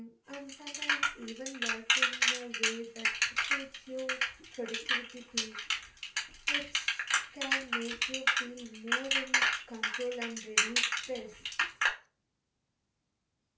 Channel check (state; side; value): identical; both; correlation 1.00